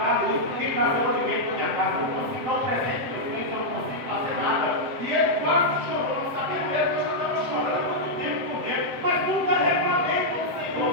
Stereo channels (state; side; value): late; left; 7.8 ms